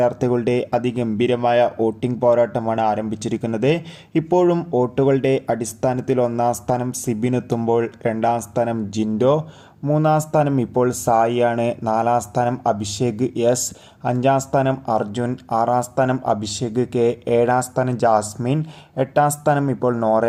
അതിഗംഭീരമായ വോട്ടിംഗ് പോരാട്ടമാണ് ആരംഭിച്ചിരിക്കുന്നത്. ഇപ്പോഴും വോട്ടുകളുടെ അടിസ്ഥാനത്തിൽ 1ാം സ്ഥാനം സിബിനെത്തുമ്പോൾ 2ാം സ്ഥാനം ജിൻഡോ, 3ാം സ്ഥാനം ഇപ്പോൾ സായിയാണ്, 4ാം സ്ഥാനം അഭിഷേക് S, 5ാം സ്ഥാനം അർജുൻ, 6ാം സ്ഥാനം അഭിഷേക് K, 7ാം സ്ഥാനം ജാസ്മിൻ, 8ാം സ്ഥാനം ഇപ്പോൾ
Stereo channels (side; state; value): both; identical; correlation 1.00